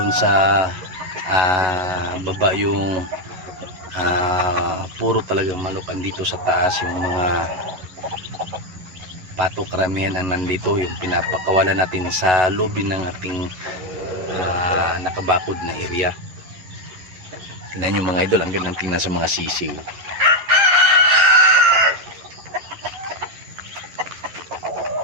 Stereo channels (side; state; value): left; late; 11 ms